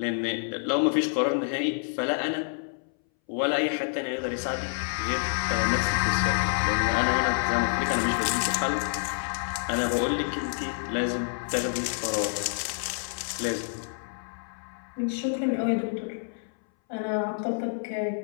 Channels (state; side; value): silent; right; 59 dB below the other